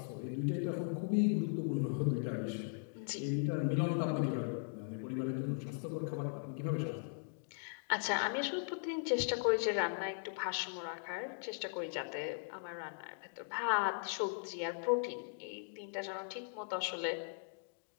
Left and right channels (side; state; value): right; silent; digital silence